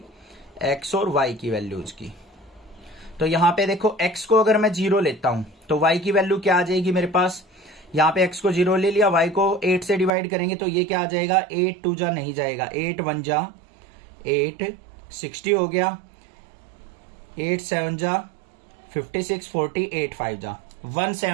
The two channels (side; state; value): left; drops out; at 10.1 s